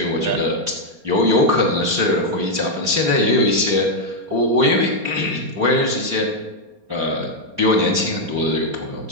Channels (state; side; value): late; left; 4.3 ms